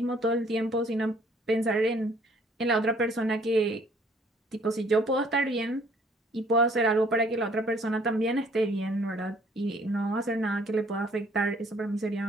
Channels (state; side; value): normal; both; correlation 0.60